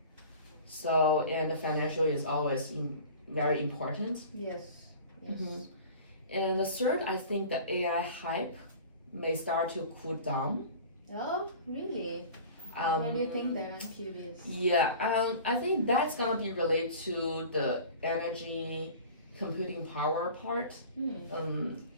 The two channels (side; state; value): both; inverted; correlation -0.41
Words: So, and the financial is always very important. Yes. And the third, I think the AI hype may start to cool down. Oh, really? Why do you think that? I'm curious. Yeah, I think that's gonna be related to the energy computing power part.